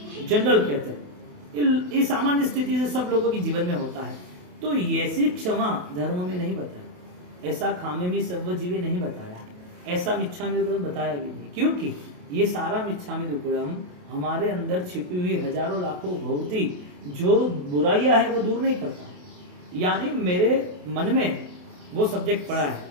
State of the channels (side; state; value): left; late; 28 ms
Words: जनरल कहते हैं। ये सामान्य स्थिति से सब लोगों के जीवन में होता है। तो ऐसी क्षमा धर्म में नहीं बताया, ऐसा खामेमी सर्वजीवी नहीं बताया, ऐसा मिच्छामि दुक्कडम बताया भी नहीं, क्योंकि ये सारा मिच्छामि दुक्कडम हमारे अंदर छिपी हुई हजारों लाखों भौती जो बुराइयां है वो दूर नहीं करता। यानी मेरे मन में वो सब्जेक्ट पड़ा है,